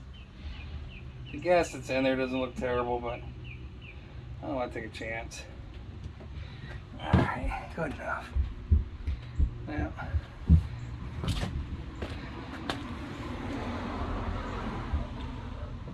The gas that's in there doesn't look terrible, but I don't want to take a chance. Alright, good enough. Now,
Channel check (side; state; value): both; identical; correlation 1.00